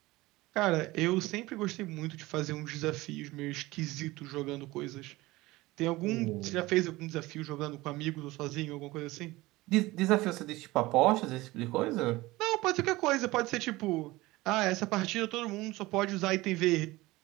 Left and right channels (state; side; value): quieter; left; 19.8 dB